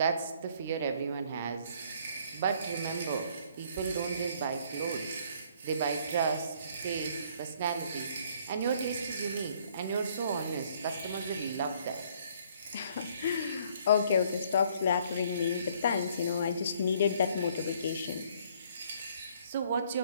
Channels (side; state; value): both; inverted; correlation -0.61